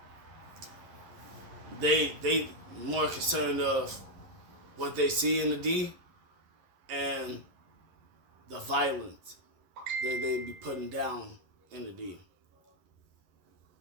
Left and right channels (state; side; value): late; left; 11 ms